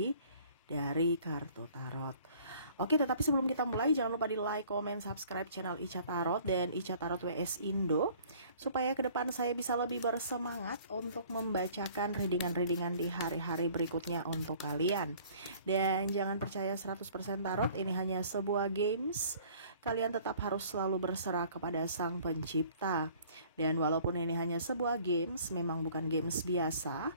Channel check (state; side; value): inverted; both; correlation -0.54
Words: dari kartu tarot. Oke, tetapi sebelum kita mulai, jangan lupa di like, comment, subscribe channel Ica Tarot dan Ica Tarot WS Indo, supaya ke depan saya bisa lebih bersemangat untuk membacakan readingan-readingan di hari-hari berikutnya untuk kalian. Dan jangan percaya 100% tarot, ini hanya sebuah games. Kalian tetap harus selalu berserah kepada Sang Pencipta. Dan walaupun ini hanya sebuah games, memang bukan games biasa,